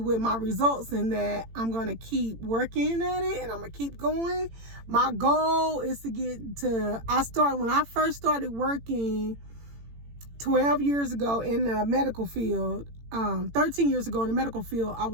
my results, and that I'm going to keep working at it, and I'm going to keep going. My goal is to when I first started working 12 years ago in the medical field, 13 years ago in the medical field, I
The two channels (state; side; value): late; left; 18 ms